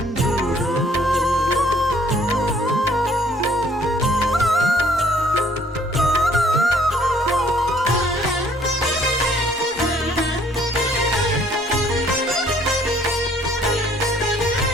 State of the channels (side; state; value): both; normal; correlation 0.60